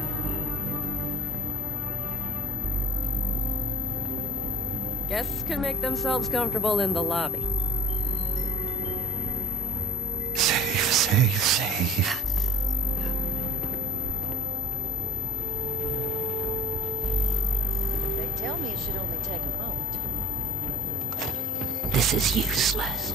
Guests can make themselves comfortable in the lobby. Safe, safe, safe. They tell me it should only take a moment. This is useless.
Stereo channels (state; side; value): normal; both; correlation 0.51